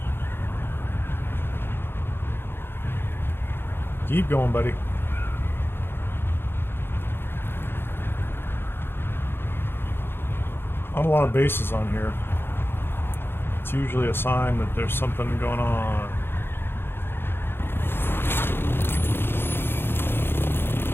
Keep going, buddy. Not a lot of bases on here. It's usually a sign that there's something going on.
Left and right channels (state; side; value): late; right; 0.11 ms